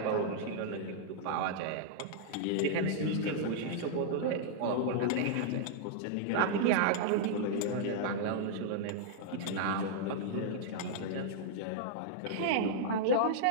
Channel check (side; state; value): both; different; correlation -0.02